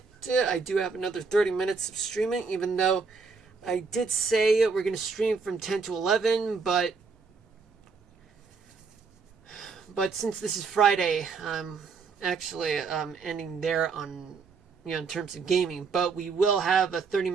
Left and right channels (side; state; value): left; quieter; 5.0 dB